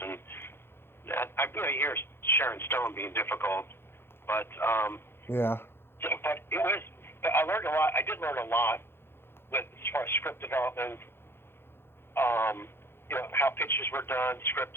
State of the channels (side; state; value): right; late; 0.11 ms